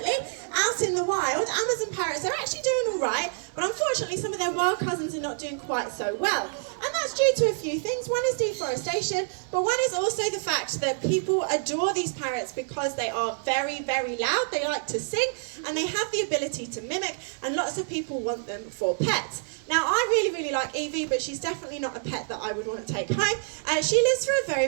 out in the wild, Amazon parrots are actually doing all right, but unfortunately some of their wild cousins are not doing quite so well. And that's due to a few things. One is deforestation, but one is also the fact that people adore these parrots because they are very, very loud, they like to sing, and they have the ability to mimic, and lots of people want them for pets. Now, I really, really like Evie, but she's definitely not a pet that I would want to take home. She lives for a very,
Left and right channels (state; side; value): silent; left; digital silence